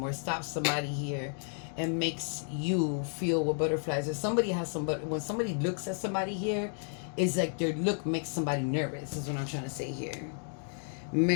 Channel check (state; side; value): silent; right; 56 dB below the other